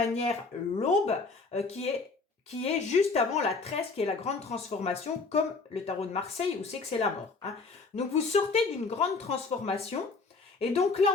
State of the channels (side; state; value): right; quieter; 4.1 dB